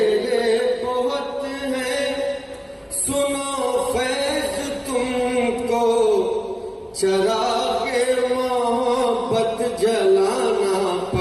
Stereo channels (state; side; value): identical; both; correlation 1.00